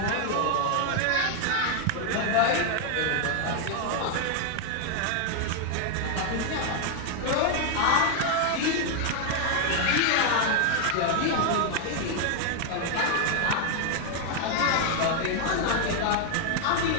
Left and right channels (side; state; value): both; different; correlation 0.00